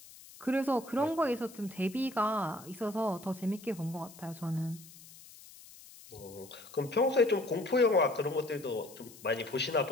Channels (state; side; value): noise; left; hiss, 20 dB below the sound